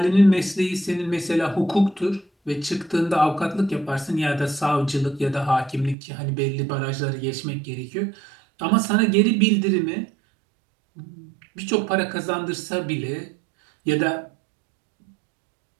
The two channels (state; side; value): drops out; left; at 6.0 s